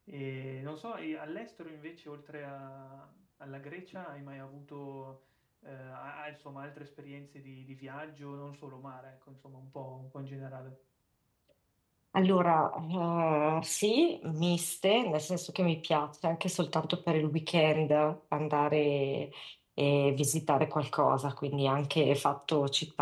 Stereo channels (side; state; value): both; identical; correlation 1.00